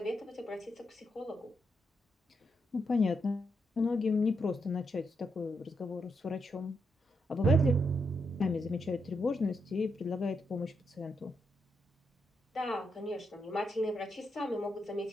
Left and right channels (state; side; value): normal; both; correlation 0.81